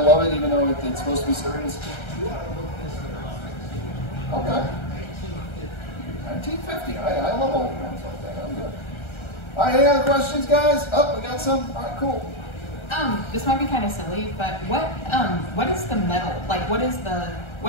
it, even though it's supposed to be serious. Okay. 1950, I love old ones like that, I'm good. All right, any other questions, guys? Oh, we got some? All right, cool. This might be kind of silly, but what is the metal? Like, what is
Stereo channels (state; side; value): late; right; 1.3 ms